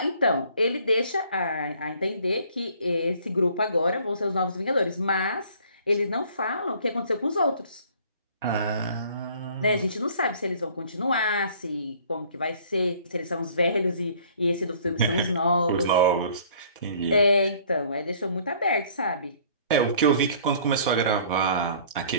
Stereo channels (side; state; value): both; inverted; correlation -0.55